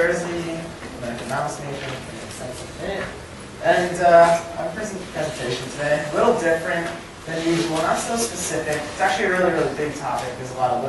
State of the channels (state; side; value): identical; both; correlation 1.00